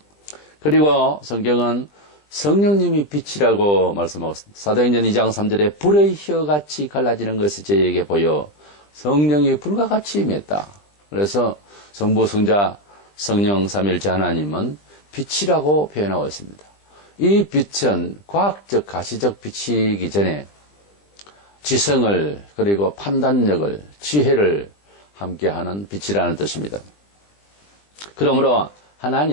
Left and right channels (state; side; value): late; right; 20 ms